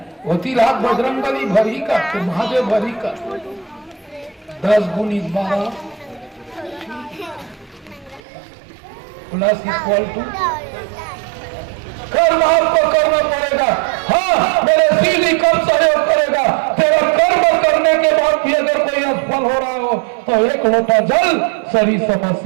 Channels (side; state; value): left; drops out; at 8.2 s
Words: होती रात बजरंग बली भरी का तो महादेव भरी का 10 गुणित 12 प्लस इक्वल टू कर्म आपको करना पड़ेगा। हाँ, मेरे सीधी कब सहयोग करेगा? तेरा कर्म करने के बाद भी अगर कोई असफल हो रहा हो तो एक लोटा जल, सारी